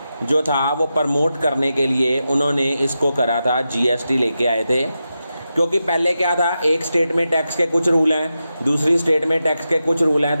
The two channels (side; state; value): both; inverted; correlation -0.90